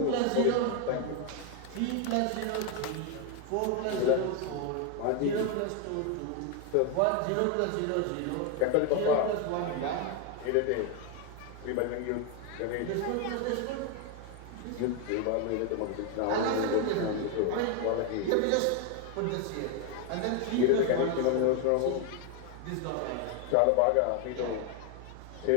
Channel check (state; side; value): different; both; correlation 0.01